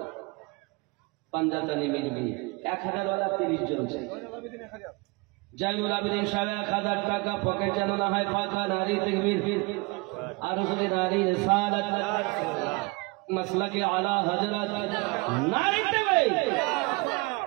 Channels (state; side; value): quieter; left; 27.2 dB